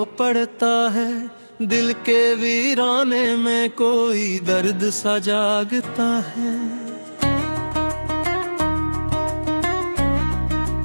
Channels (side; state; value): both; inverted; correlation -1.00